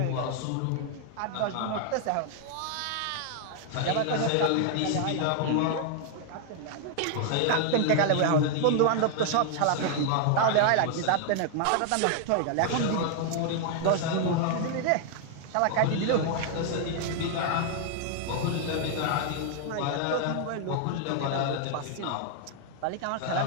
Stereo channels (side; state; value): both; different; correlation 0.00